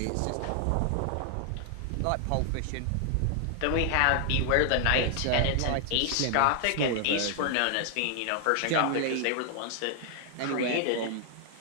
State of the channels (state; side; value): different; both; correlation 0.00